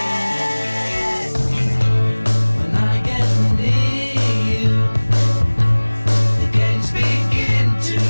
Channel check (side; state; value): both; inverted; correlation -1.00